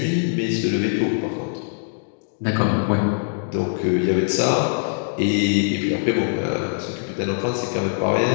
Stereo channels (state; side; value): silent; right; digital silence